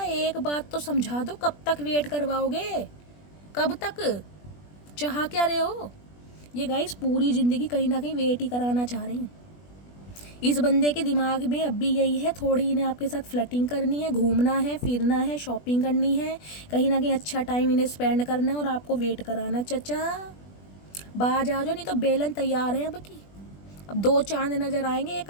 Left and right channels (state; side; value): late; right; 20 ms